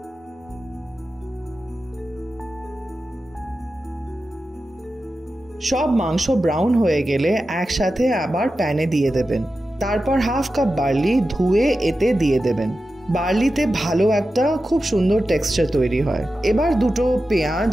সব মাংস ব্রাউন হয়ে গেলে একসাথে আবার প্যানে দিয়ে দেবেন। তারপর হাফ কাপ বার্লি ধুয়ে এতে দিয়ে দেবেন। বার্লিতে ভালো একটা খুব সুন্দর টেক্সচার তৈরি হয়। এবার দুটো পেঁয়াজ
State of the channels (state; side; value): normal; both; correlation 0.92